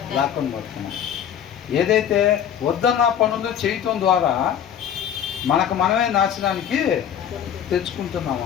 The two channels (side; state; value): right; quieter; 9.2 dB